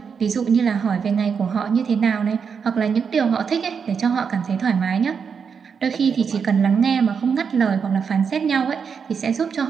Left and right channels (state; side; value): quieter; left; 6.3 dB